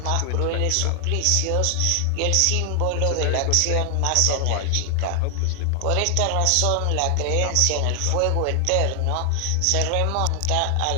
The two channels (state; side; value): different; both; correlation 0.00